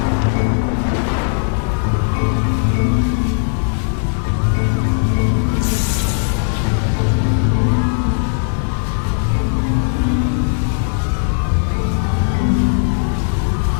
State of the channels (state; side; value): silent; right; 68 dB below the other